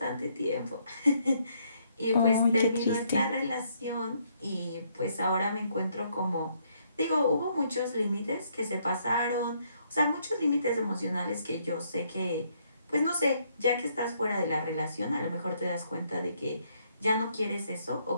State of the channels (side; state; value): both; inverted; correlation -0.71